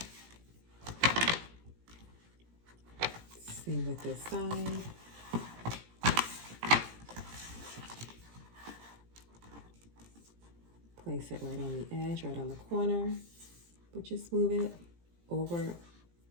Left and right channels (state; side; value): late; left; 17 ms